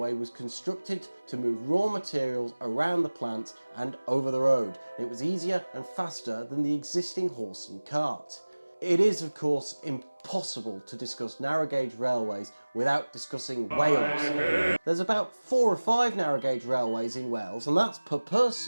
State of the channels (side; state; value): both; inverted; correlation -1.00